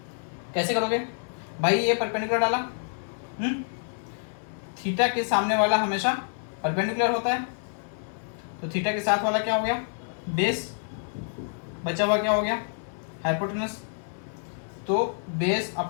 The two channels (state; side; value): silent; right; digital silence